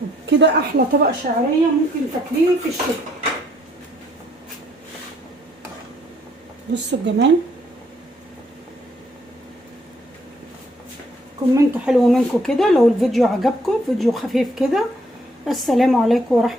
كده احلى طبق شعريه ممكن تاكليه في الشتاء. بصوا الجمال. كومنت حلو منكم كده لو الفيديو عجبكم، فيديو خفيف كده. السلام عليكم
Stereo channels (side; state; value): both; normal; correlation 0.68